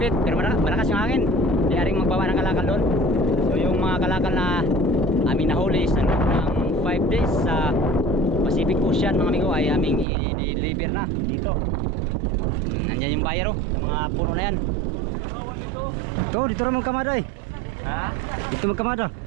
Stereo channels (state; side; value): drops out; left; at 10.1 s